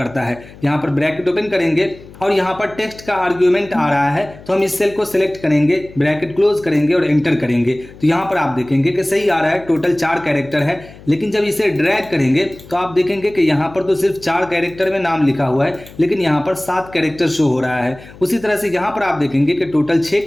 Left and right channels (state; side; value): noise; left; hum, 20 dB below the sound